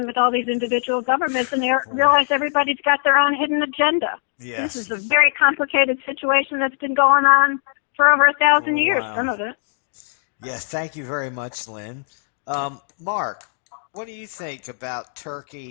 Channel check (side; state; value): right; silent; digital silence